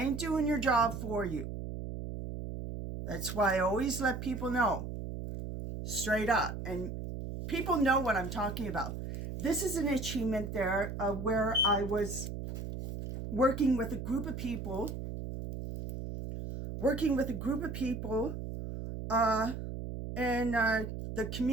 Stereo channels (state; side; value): noise; right; hum, 6 dB below the sound